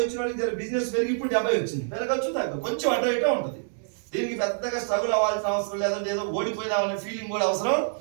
వచ్చిన వాళ్ళకి జర బిజినెస్ పెరిగి ఇప్పుడు 70 వచ్చింది. పెరగచ్చు తగ్గ కొంచెం అటు ఇటే ఉంటుంది. దీనికి పెద్దగా స్ట్రగుల్ అవ్వాల్సిన అవసరం లేదంటే ఏదో ఓడిపోయినామనే ఫీలింగ్ కూడా అవసరం.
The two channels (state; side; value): silent; left; digital silence